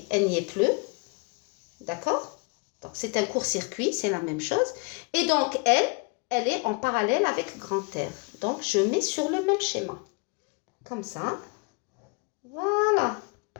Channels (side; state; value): right; quieter; 31.4 dB